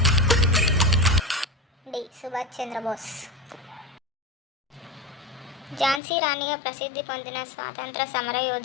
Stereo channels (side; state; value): right; drops out; at 6.0 s